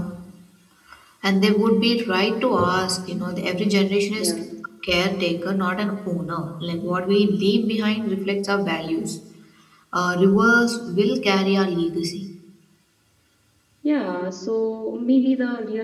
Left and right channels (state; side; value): identical; both; correlation 1.00